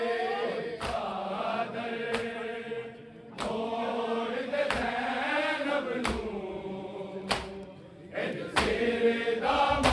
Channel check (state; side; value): identical; both; correlation 1.00